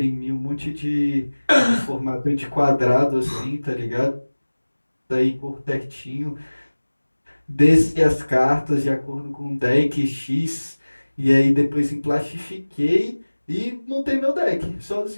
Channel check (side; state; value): both; inverted; correlation -1.00